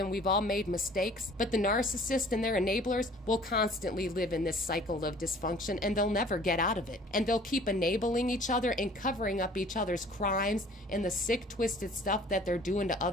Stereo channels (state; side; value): normal; both; correlation 0.51